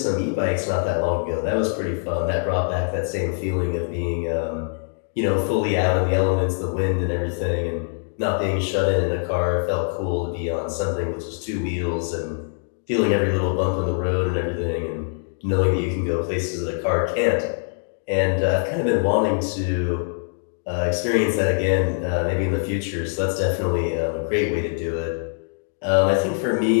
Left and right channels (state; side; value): silent; right; digital silence